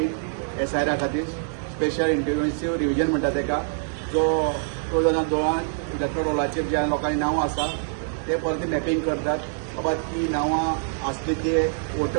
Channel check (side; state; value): left; silent; 62 dB below the other